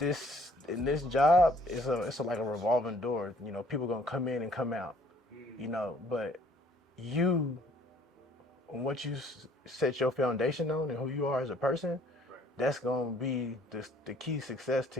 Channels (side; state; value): both; normal; correlation 0.59